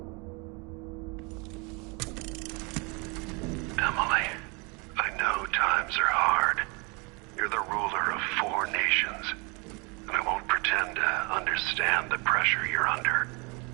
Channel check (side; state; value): left; quieter; 30.2 dB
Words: Emily, I know times are hard. You're the ruler of 4 nations, and I won't pretend to understand the pressure you're under.